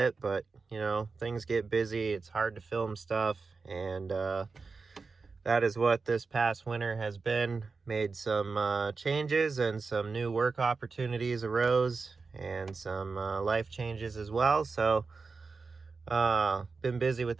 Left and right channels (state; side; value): quieter; left; 4.4 dB